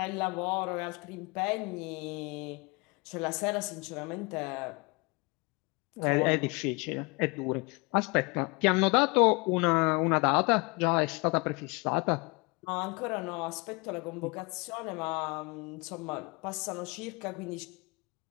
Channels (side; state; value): right; quieter; 28.3 dB